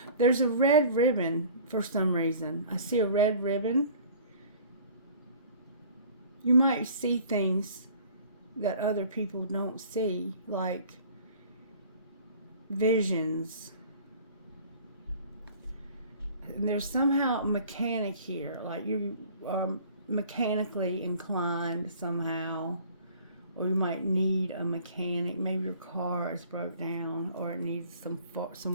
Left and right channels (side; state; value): both; inverted; correlation -0.48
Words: There's a red ribbon for some reason. I see a red ribbon. You might see things that other people don't see, like visions. And there's somehow a mechanic here, like you are mechanically inclined somehow, or you might need a mechanic. Maybe your car is broke down, or it needs